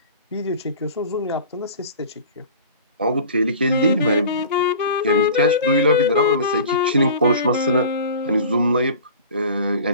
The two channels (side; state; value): both; inverted; correlation -0.40